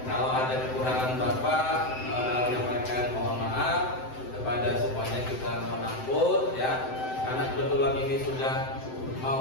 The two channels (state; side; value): late; right; 7.8 ms